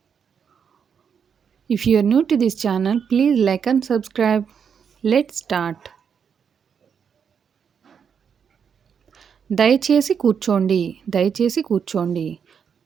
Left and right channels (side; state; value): left; quieter; 7.0 dB